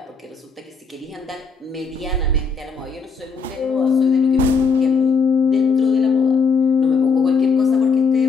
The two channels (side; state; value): right; quieter; 4.9 dB